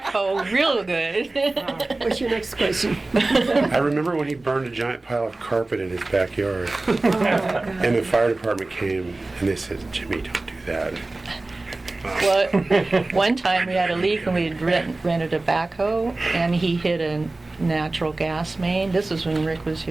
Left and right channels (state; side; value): quieter; left; 3.1 dB